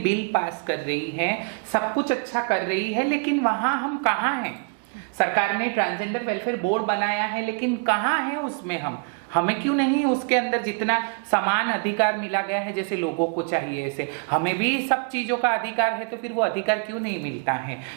पास कर रही है, सब कुछ अच्छा कर रही है, लेकिन वहाँ हम कहाँ हैं? सरकार ने ट्रांसजेंडर वेलफेयर बोर्ड बनाया है, लेकिन कहाँ है उसमें हमें क्यों नहीं उसके अंदर जितना समान अधिकार मिला गया है जैसे लोगों को चाहिए, ऐसे हमें भी सब चीजों का अधिकार है, तो फिर वो अधिकार क्यों नहीं मिलता है?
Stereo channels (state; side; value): quieter; left; 36.8 dB